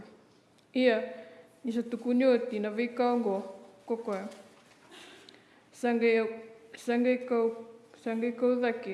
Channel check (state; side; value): identical; both; correlation 1.00